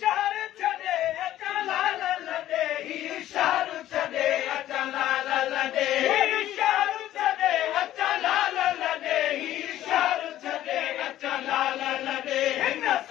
शहर छॾे अचा लाल लॾे ही शहर छॾे अचा लाल लॾे शहर छॾे अचा लाल लॾे ही शहर छॾे अचा लाल लॾे हिन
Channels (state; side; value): quieter; right; 13.3 dB